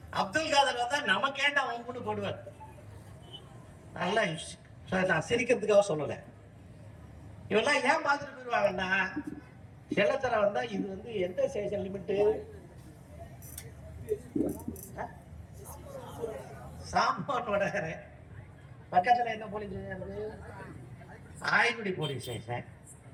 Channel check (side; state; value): both; identical; correlation 1.00